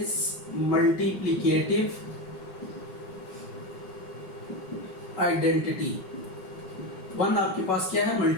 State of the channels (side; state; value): right; late; 5.4 ms